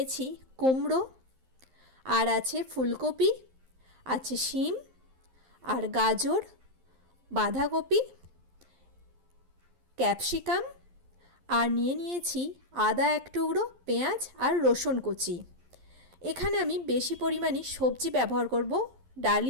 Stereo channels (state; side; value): late; left; 11 ms